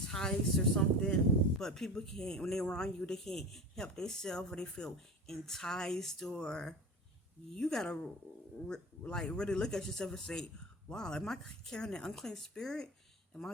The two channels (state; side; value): normal; both; correlation 0.31